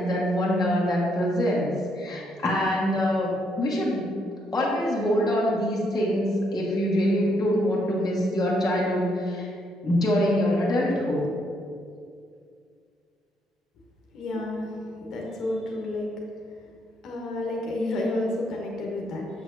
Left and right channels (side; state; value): both; normal; correlation 0.74